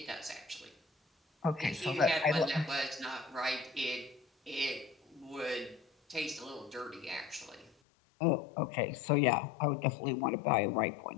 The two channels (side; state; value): right; drops out; at 7.8 s